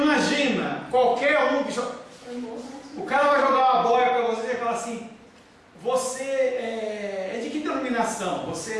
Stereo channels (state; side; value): identical; both; correlation 1.00